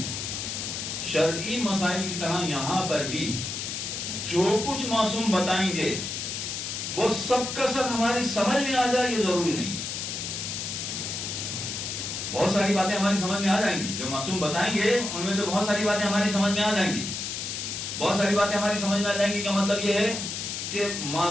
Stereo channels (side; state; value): left; noise; hiss, 4 dB below the sound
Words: شرعی مسائل کی طرح یہاں پر بھی جو کچھ معصوم بتائیں گے وہ سب کا سب ہماری سمجھ میں آ جائے یہ ضروری نہیں ہے. بہت ساری باتیں ہماری سمجھ میں آ جائیں گی. جو معصوم بتائیں گے ان میں سے بہت ساری باتیں ہماری سمجھ میں آ جائیں گی. بہت ساری باتیں ہماری سمجھ میں آ جائیں گی کا مطلب یہ ہے کہ